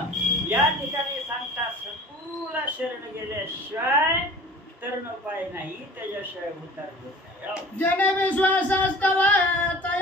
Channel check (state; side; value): normal; both; correlation 0.44